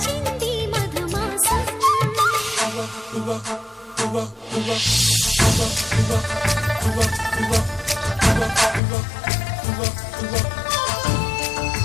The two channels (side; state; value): right; drops out; at 8.8 s